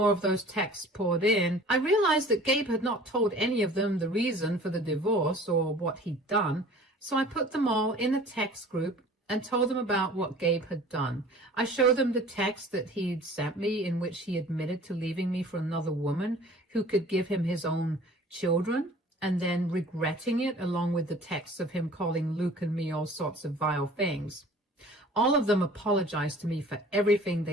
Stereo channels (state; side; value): normal; both; correlation 0.47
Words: of those texts poured in, I realized that Gabe had not told any of them the reason for the divorce or what he'd done, so I put them all in a text group and told them about what Gabe had done. I showed them the text that he'd sent me in which he admitted to leaving me for another woman who could give him his own children, and then regretting it, along with the texts of him calling Luke and me all sorts of vile things. All of them apologized to me for everything